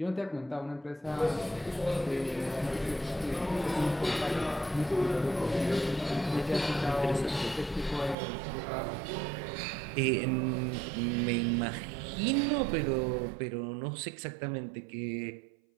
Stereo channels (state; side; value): drops out; left; at 8.2 s